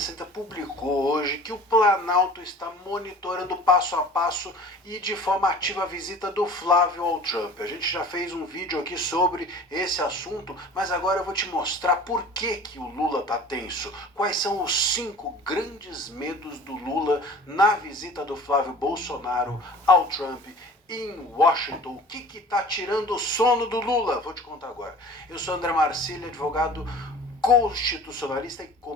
publicou hoje que o Planalto está monitorando passo a passo e de forma ativa a visita do Flávio ao Trump. A gente já fez um vídeo aqui sobre esse assunto, mas agora eu vou te mostrar por que o Lula está tenso. Quais são os 5 grandes medos do Lula na visita do Flávio Bolsonaro ao Trump em Washington. O que está tirando o sono do Lula? Vou te contar agora. Eu sou André Marcílio, advogado constitucionalista e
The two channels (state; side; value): normal; both; correlation 0.44